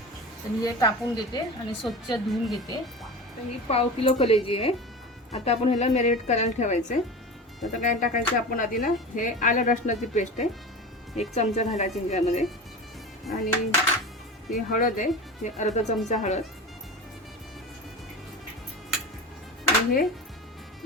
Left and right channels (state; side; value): normal; both; correlation 0.30